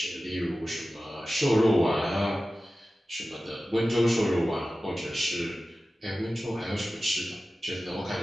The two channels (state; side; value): normal; both; correlation 0.95